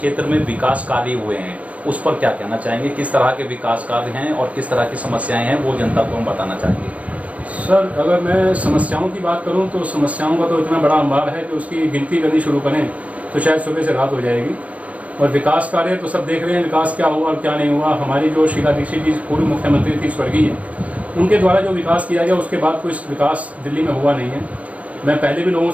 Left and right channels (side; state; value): left; late; 0.067 ms